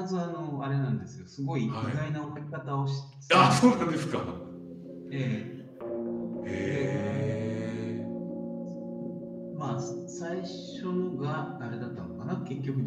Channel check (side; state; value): both; identical; correlation 1.00